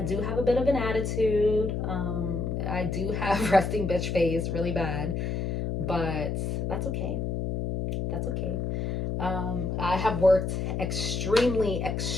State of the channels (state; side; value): noise; left; hum, 1 dB below the sound